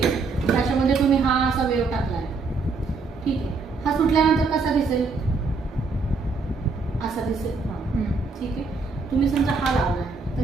त्याच्यामध्ये तुम्ही हा असा वेव टाकला आहे, ठीक आहे. हा सुटल्यानंतर कसा दिसेल, असा दिसेल, ठीक आहे. तुम्ही समजा हा लावला आहे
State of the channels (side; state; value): left; quieter; 4.3 dB